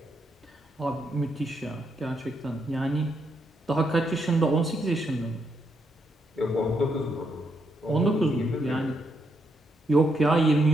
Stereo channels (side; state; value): both; normal; correlation 0.78